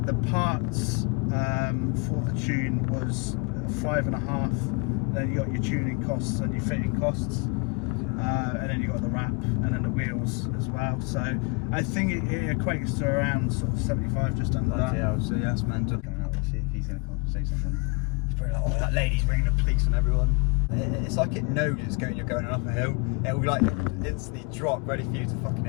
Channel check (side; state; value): right; quieter; 31.5 dB